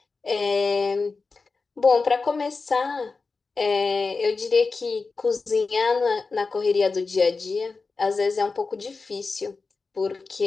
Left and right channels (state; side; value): quieter; right; 4.2 dB